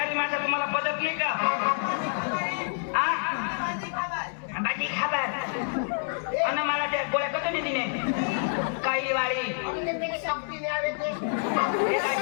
माणसं तुम्हाला पदक नाही का बाकी खबर अन मला त्या गोळ्या कतो नाही तिने काही वाळी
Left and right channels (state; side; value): silent; right; digital silence